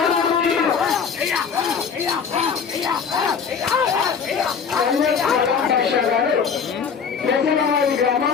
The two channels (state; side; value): quieter; right; 6.4 dB